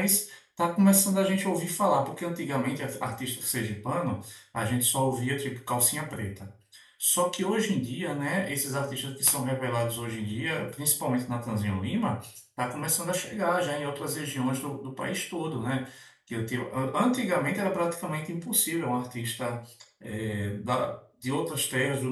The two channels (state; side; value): identical; both; correlation 1.00